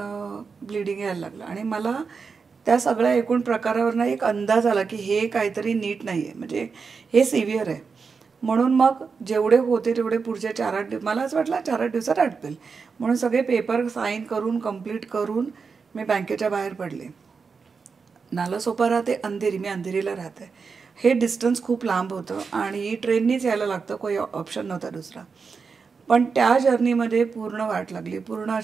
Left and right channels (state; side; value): quieter; left; 5.2 dB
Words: ब्लिडिंग यायला लागलं आणि मला त्या सगळ्या एकूण प्रकारावरनं एक अंदाज आला की हे काहीतरी नीट नाही आहे, म्हणजे हे सिव्हिअर आहे. म्हणून मग जेवढे होते तेवढे पुढचे 4-8 दिवस, मला असं वाटलं 4-8 दिवसात आटपेल म्हणून सगळे पेपर साईन करून कंप्लीट करून मी बँकेच्या बाहेर पडले. नालासोपारा ते अंधेरी, मी अंधेरीला राहते. हे डिस्टन्स खूप लांब होतं आणि ट्रेननीच यायला लागतं, काही ऑप्शन नव्हता दुसरा. पण त्या जर्नीमध्ये पूर्ण वाट लागली. पूर्ण